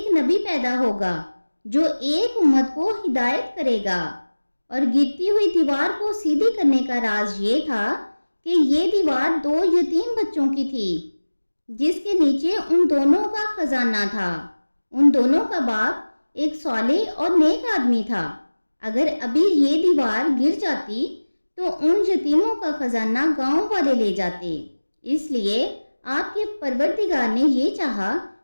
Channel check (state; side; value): inverted; both; correlation -1.00